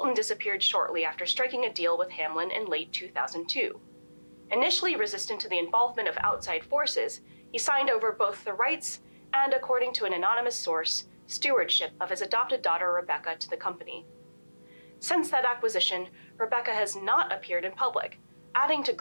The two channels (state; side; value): inverted; both; correlation -1.00